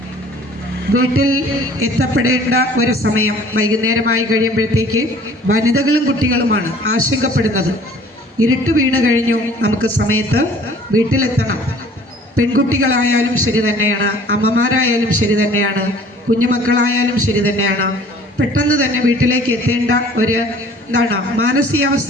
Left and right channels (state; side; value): normal; both; correlation 0.51